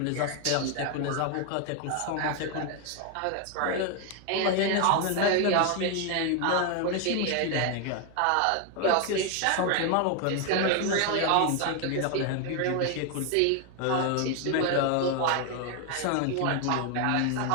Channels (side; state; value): both; different; correlation 0.01